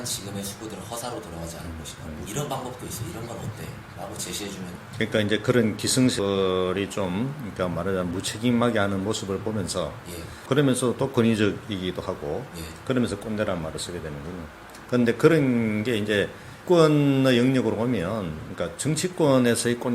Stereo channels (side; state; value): both; identical; correlation 1.00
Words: 지금의 수고들은 허사로 돌아가지 않을 것이다. 뭐 이런 방법도 있어. 이런 건 어때? 라고 제시해주면 그러니까 이제 그런 기승설이 좀 그러니까 말하자면 무책임하게 하는 모습을 보면서 예, 그러면서 또 권위적이기도 하고 예, 그러면서 꼰대라는 말을 쓰게 되는군요. 그런데 그런 게 이제 정치권의 영역으로 오면 그러니까 정치권에서의